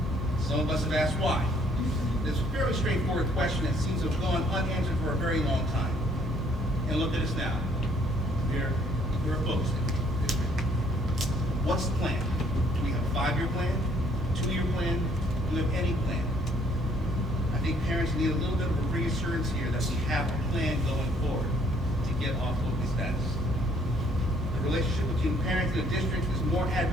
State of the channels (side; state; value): both; normal; correlation 0.64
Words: Some of us have asked why. It's a fairly straightforward question that seems to have gone unanswered for a very long time. And look at us now. We're a focus district. What's the plan? Do we have a 5-year plan? A 2-year plan? Do we have any plan? I think parents need a little bit of a reassurance here that we have a plan going forward to get off focus status. The relationship between parents and the district is more